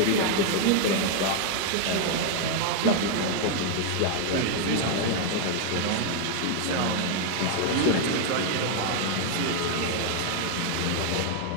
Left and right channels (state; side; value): different; both; correlation 0.00